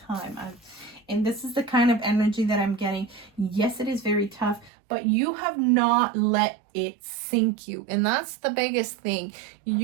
time. And this is the kind of energy that I'm getting. Yes, it is very tough, but you have not let it sink you. And that's the biggest thing.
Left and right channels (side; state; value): left; drops out; at 4.7 s